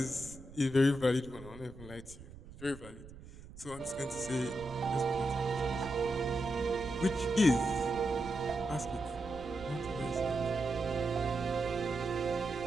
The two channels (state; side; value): noise; right; rumble, 17 dB below the sound